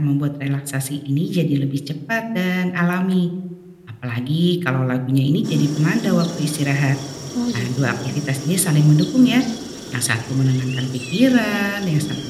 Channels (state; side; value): identical; both; correlation 1.00